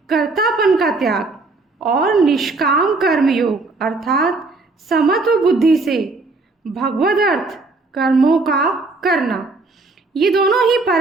कर्तापन का त्याग और निष्काम कर्म योग अर्थात समत्व बुद्धि से भगवद अर्थ कर्मों का करना, ये दोनों ही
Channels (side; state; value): left; quieter; 3.5 dB